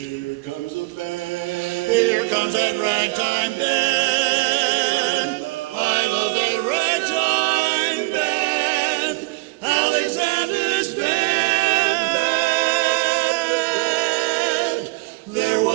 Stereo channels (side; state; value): left; quieter; 25.2 dB